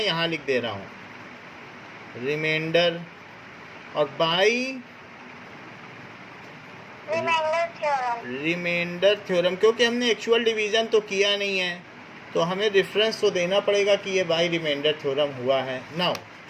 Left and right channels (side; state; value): both; identical; correlation 1.00